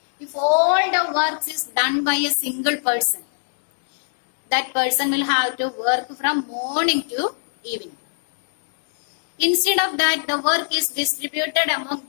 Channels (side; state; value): right; silent; digital silence